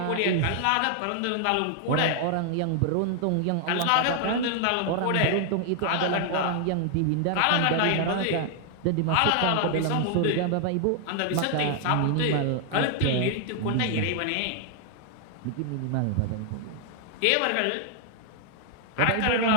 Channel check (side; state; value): both; different; correlation 0.00